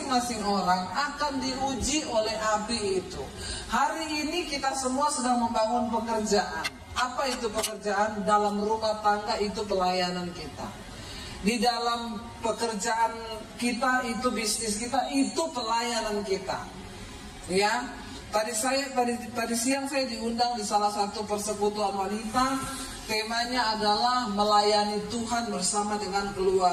orang akan diuji oleh api itu. Hari ini kita semua sedang membangun pekerjaan. Apa itu pekerjaan? Dalam rumah tangga itu pelayanan kita. Di dalam pekerjaan kita itu, bisnis kita itu pelayanan kita. Ya, tadi siang saya diundang di salah satu persekutuan wanita. Temanya adalah melayani Tuhan bersama dengan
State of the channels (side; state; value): both; identical; correlation 1.00